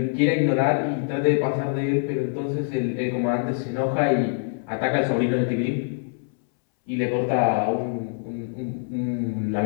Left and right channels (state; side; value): silent; right; 62 dB below the other